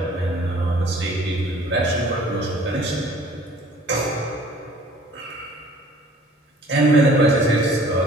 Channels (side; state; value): both; normal; correlation 0.52